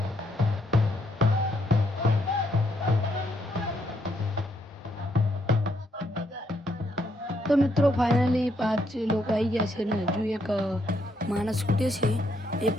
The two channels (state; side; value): normal; both; correlation 0.75